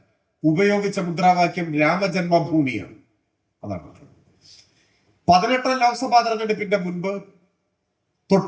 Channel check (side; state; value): both; identical; correlation 1.00